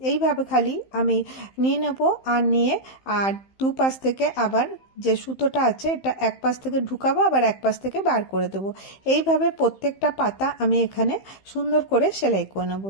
এইভাবে খালি আমি নিয়ে নেব, আর নিয়ে আর দুপাশ থেকে আবার যে সুতোটা আছে এটা এক পাশ থেকে ঢুকাবো, আবার এক পাশ থেকে বার করে দেবো। এইভাবে এইভাবে প্রত্যেকটা পাতা আমি এখানে সুন্দর করে সেলাই করে নেব।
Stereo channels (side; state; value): right; late; 15 ms